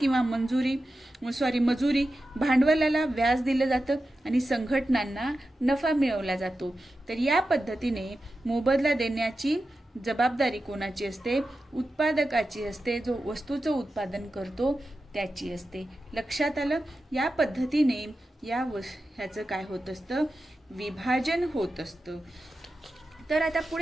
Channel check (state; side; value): normal; both; correlation 0.92